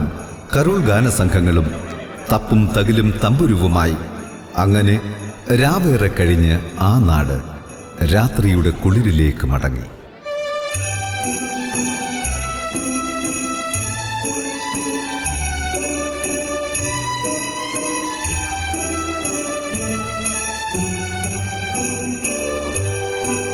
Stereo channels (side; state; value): both; identical; correlation 1.00